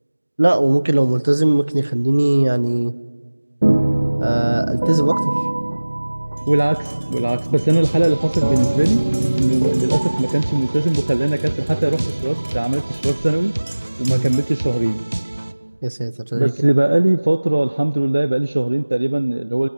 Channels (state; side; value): inverted; both; correlation -1.00